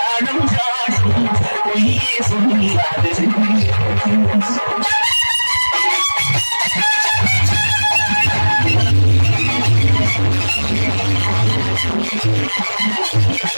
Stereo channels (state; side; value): inverted; both; correlation -1.00